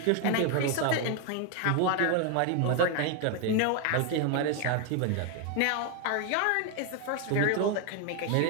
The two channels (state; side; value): different; both; correlation 0.01